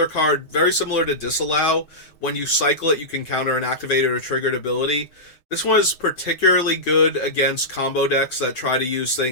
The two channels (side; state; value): right; late; 6.5 ms